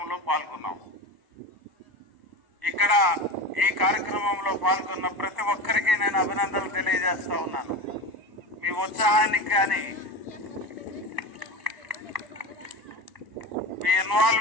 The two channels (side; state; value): left; late; 1.0 ms